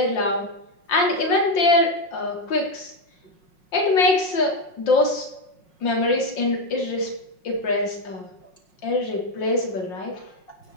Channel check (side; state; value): right; late; 5.6 ms